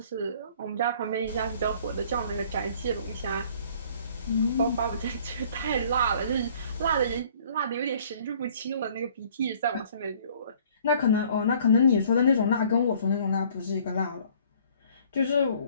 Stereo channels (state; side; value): inverted; both; correlation -0.56